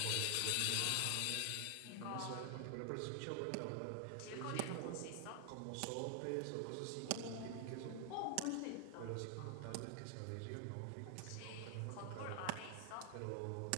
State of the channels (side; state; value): both; different; correlation 0.00